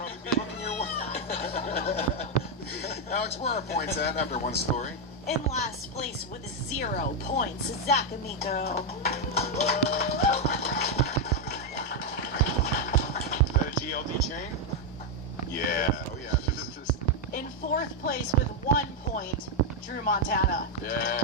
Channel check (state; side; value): normal; both; correlation 0.02